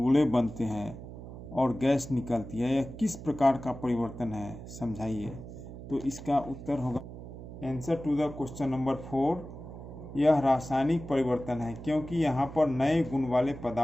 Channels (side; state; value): right; noise; hum, 12 dB below the sound